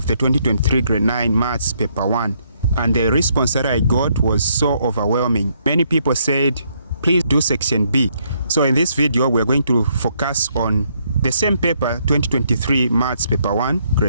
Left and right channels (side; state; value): both; inverted; correlation -0.72